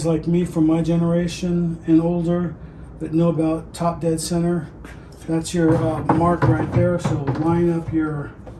like me from my generation and older that know about top dead center, that's your mark right there. So line up your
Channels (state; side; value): identical; both; correlation 1.00